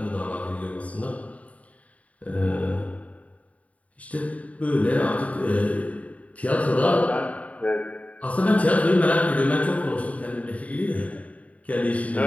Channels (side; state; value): right; late; 0.068 ms